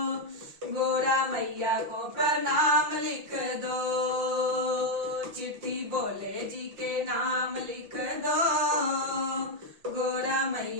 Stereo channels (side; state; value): left; late; 5.7 ms